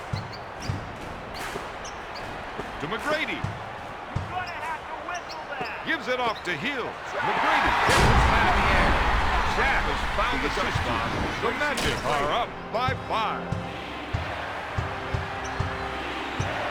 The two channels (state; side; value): identical; both; correlation 1.00